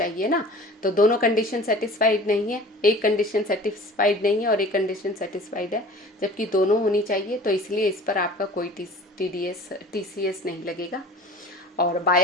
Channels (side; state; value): both; normal; correlation 0.43